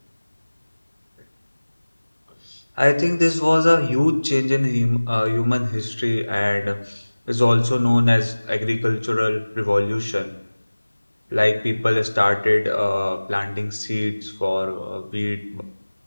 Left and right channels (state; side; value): inverted; both; correlation -1.00